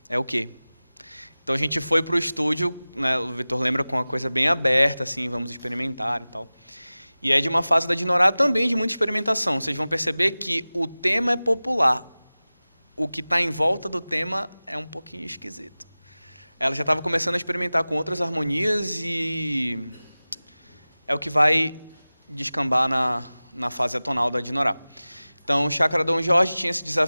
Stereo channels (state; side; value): inverted; both; correlation -0.98